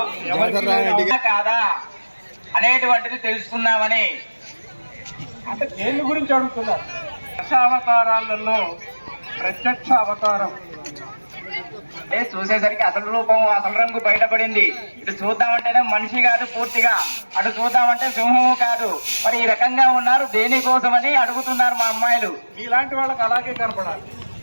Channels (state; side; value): inverted; both; correlation -1.00